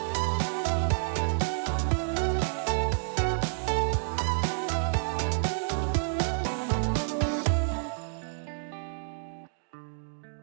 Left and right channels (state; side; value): silent; left; digital silence